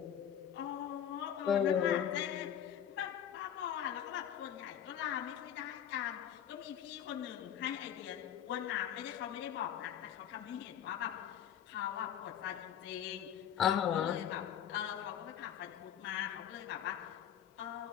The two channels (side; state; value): right; quieter; 9.6 dB